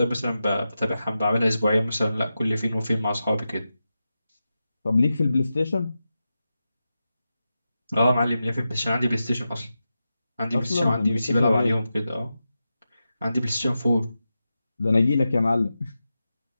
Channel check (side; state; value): both; inverted; correlation -0.91